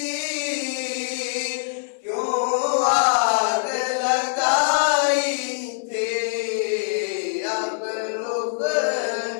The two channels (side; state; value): right; silent; 59 dB below the other